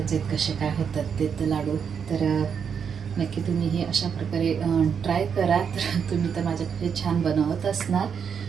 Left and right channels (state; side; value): quieter; left; 7.0 dB